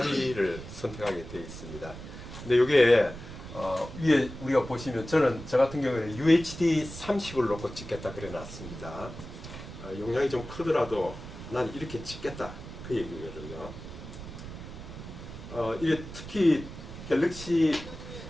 선택하게 되어 있습니다. 근데 이게 위에 우리가 보시면 저 같은 경우에는 UHD 30을 놓고 찍겠다 그래 놨습니다. 용량이 좀 크더라도 난 이렇게 찍겠다 그 얘기거든요. 이게 특히 갤럭시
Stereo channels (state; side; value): noise; right; rumble, 12 dB below the sound